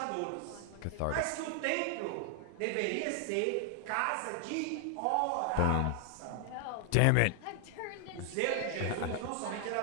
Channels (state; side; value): different; both; correlation 0.00